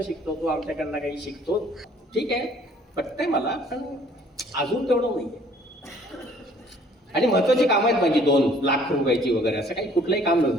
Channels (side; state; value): both; normal; correlation 0.57